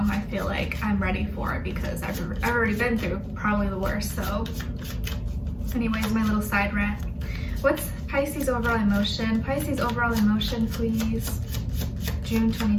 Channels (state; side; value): identical; both; correlation 1.00